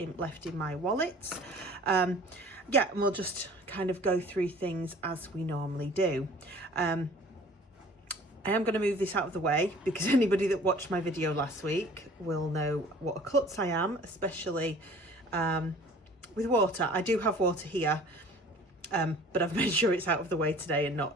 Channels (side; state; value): both; normal; correlation 0.48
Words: left in my wallets. Yeah, and we'll just kind of go through things as we normally do. I am going to move this out of the way because anybody that watched my video last week will know what a klutz I am, especially with water. I do have water here. But I've made sure it's out of the way today and